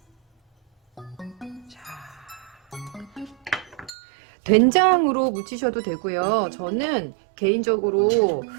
자, 된장으로 무치셔도 되고요. 저는 개인적으로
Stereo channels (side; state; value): left; drops out; at 3.9 s